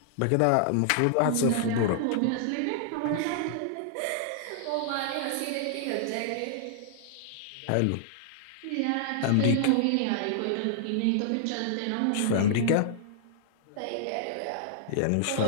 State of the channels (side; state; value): both; different; correlation -0.01